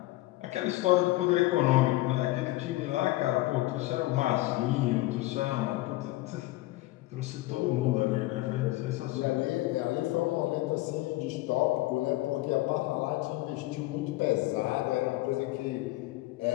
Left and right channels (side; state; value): right; quieter; 18.3 dB